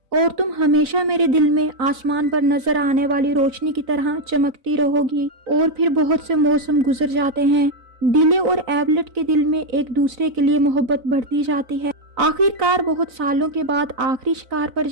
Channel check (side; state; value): left; late; 4.0 ms